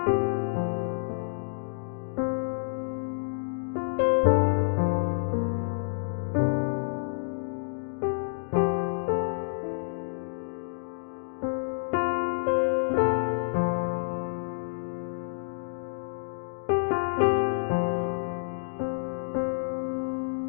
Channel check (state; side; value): silent; right; digital silence